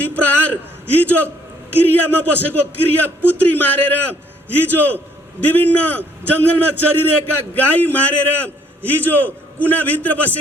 प्रहार। हिजो क्रियामा बसेको क्रिया पुत्री मारेर, हिजो विभिन्न जङ्गलमा चरिरहेका गाई मारेर, हिजो कुनाभित्र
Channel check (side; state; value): both; normal; correlation 0.65